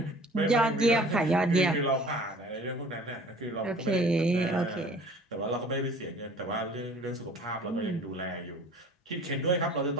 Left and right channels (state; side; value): normal; both; correlation 0.48